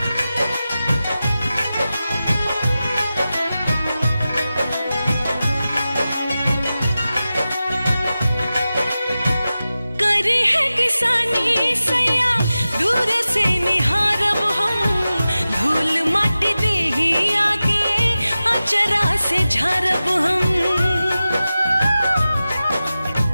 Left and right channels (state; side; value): inverted; both; correlation -0.94